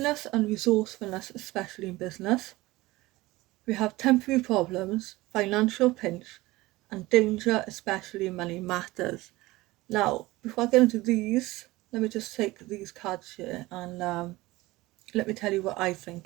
and resourcefulness, especially in business. We have temporary problems, financial pinch and danger, especially in money matters. Now, before I get into these, let me just take these cards here and let me tell you what I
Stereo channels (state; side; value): quieter; left; 19.6 dB